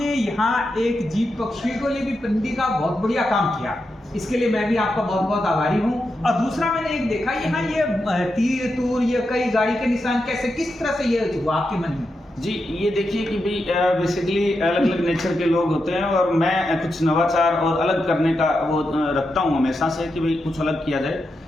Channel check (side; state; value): both; normal; correlation 0.86